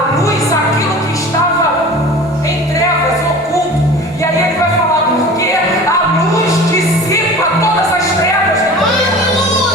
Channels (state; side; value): normal; both; correlation 0.39